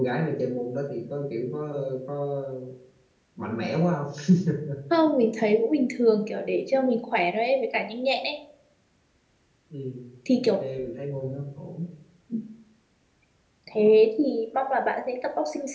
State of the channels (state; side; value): identical; both; correlation 1.00